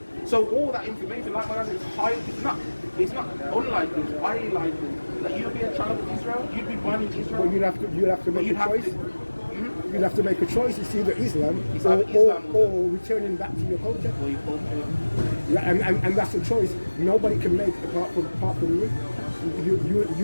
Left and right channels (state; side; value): inverted; both; correlation -1.00